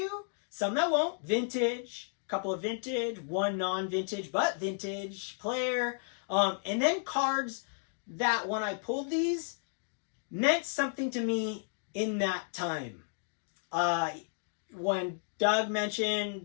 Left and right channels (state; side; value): silent; right; digital silence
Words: Some that won't. Vintage. A couple of vintage. One non-vintage, but vintage player. And then cards that when I pulled these meant something to me in that time. when Doug